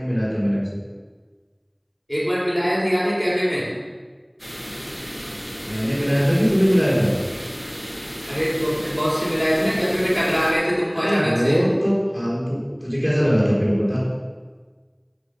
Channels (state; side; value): identical; both; correlation 1.00